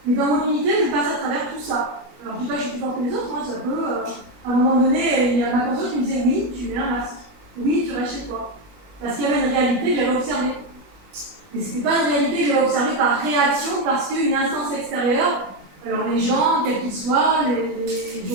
Mais dans mon unité, je passe à travers tout ça. Alors, je ne dis pas que je suis plus fort que les autres, hein, ça peut. À un moment donné, il y a ma conscience qui me disait oui, tu mets un masque. Oui, tu restes chez toi. Parce qu'il y avait une réalité que j'avais observée. Mais ce n'était pas une réalité que j'avais observée par réaction, parce qu'une instance extérieure, alors les gens, quels qu'ils soient,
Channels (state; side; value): late; left; 20 ms